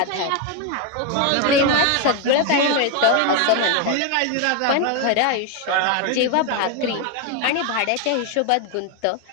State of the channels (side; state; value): both; different; correlation 0.02